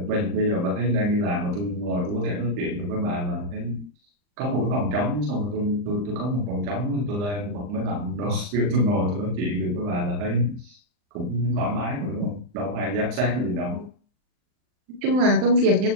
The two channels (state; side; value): late; left; 39 ms